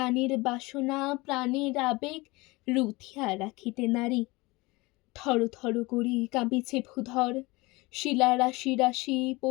বাসনা প্রাণের আবেগ রুথিয়া রাখিতে নারী। থর থর করি কাঁপিছে ভূধর, শিলা রাশি রাশি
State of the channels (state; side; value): quieter; right; 22.9 dB